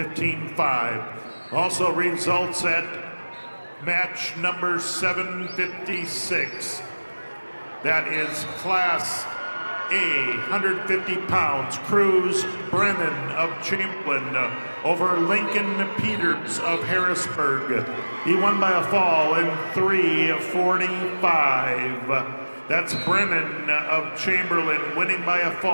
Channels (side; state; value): both; inverted; correlation -1.00